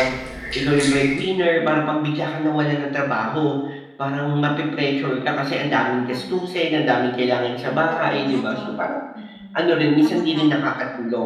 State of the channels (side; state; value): both; identical; correlation 1.00